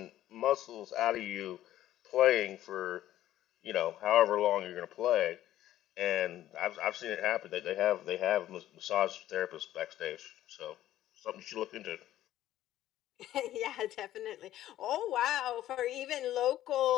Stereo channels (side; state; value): right; quieter; 13.3 dB